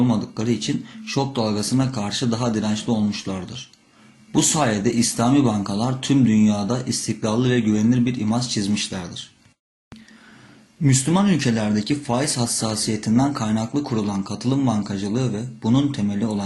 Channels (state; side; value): identical; both; correlation 1.00